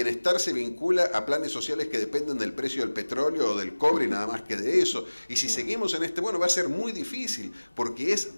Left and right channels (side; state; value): both; inverted; correlation -1.00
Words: se vincula a planes sociales que dependen del precio del petróleo o del cobre y nada más que de eso, y si seguimos en bueno, va a ser muy difícil, porque es